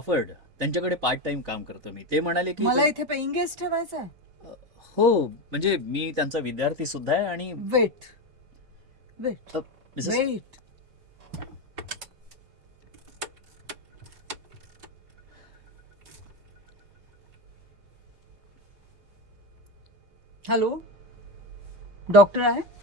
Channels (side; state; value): left; late; 6.9 ms